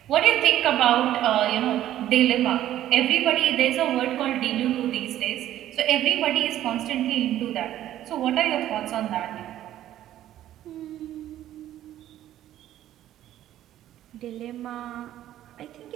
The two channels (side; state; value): left; quieter; 12.7 dB